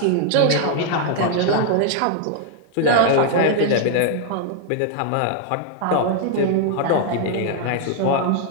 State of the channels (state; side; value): different; both; correlation 0.00